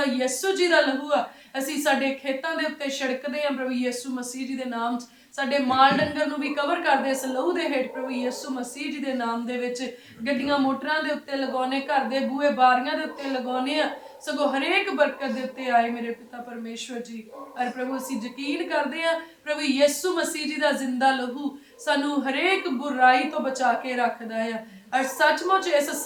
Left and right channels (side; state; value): both; identical; correlation 1.00